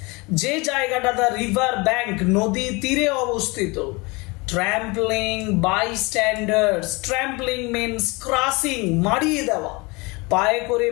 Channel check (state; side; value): quieter; right; 26.1 dB